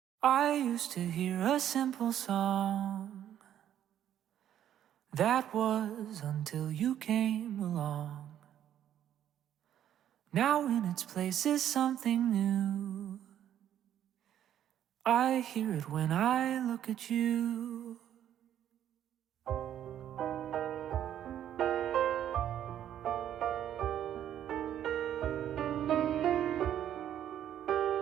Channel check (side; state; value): left; quieter; 10.7 dB